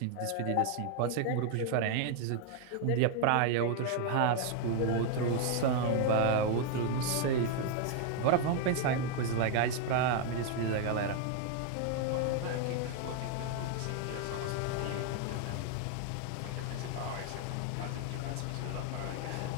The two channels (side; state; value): both; different; correlation 0.00